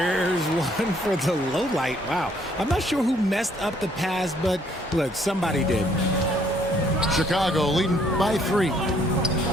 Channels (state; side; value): normal; both; correlation 0.65